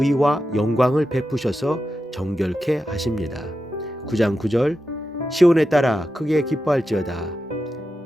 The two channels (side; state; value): both; normal; correlation 0.89